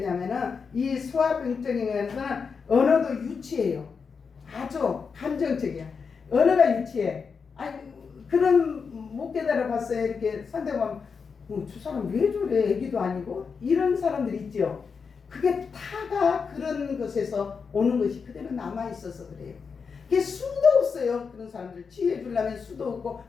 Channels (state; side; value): quieter; right; 5.6 dB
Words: 이 소아병적인 것은 언어도 유치해요. 아주 감정적이야. 언어가 유치해. 아니 그런 못 깨달아 봤어요. 이렇게 상대방 저 사람 왜 저래? 애기도 아니고 이런 사람들 있죠. 그게 타가 그런 것에서 오는 것이 그대로 남아있어서 그래요. 그게 수도 없어요. 그런 사람들 치유해 주려면 수도 없고